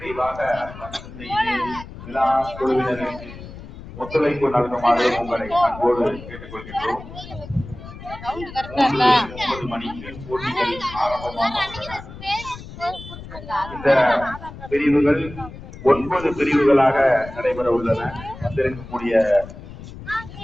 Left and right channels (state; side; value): noise; left; rumble, 14 dB below the sound